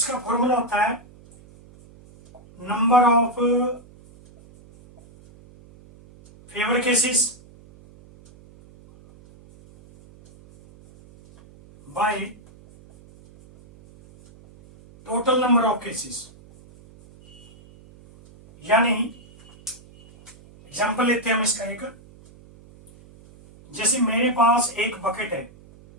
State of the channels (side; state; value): right; noise; hum, 24 dB below the sound